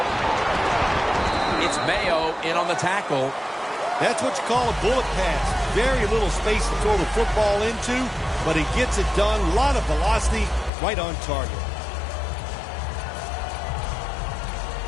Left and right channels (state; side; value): drops out; right; at 10.7 s